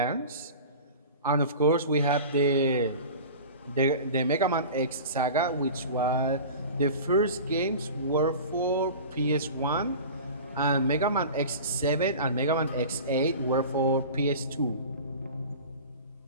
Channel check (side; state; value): both; inverted; correlation -0.36